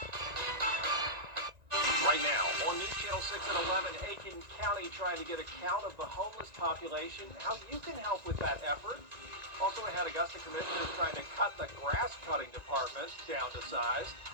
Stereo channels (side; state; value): left; late; 1.9 ms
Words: Right now, on News Channel 6 at 11, Aiken County trying to get a count of the homeless population, how you can help with that effort. Also ahead, Augusta commissioners trying to cut the grass cutting department down to size.